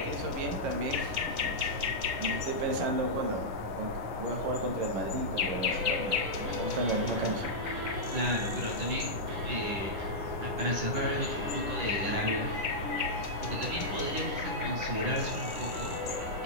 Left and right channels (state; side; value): late; left; 9.8 ms